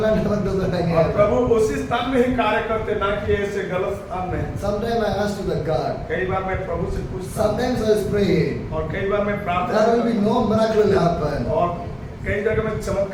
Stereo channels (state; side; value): identical; both; correlation 1.00